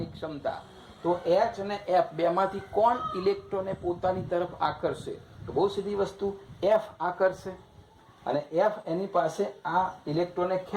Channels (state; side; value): identical; both; correlation 1.00